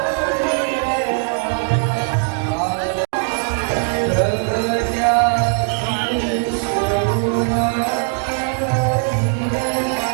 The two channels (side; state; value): left; silent; 60 dB below the other